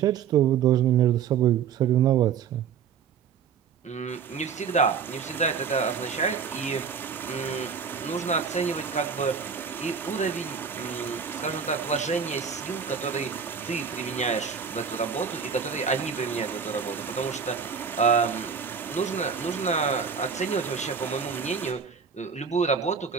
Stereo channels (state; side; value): quieter; left; 6.6 dB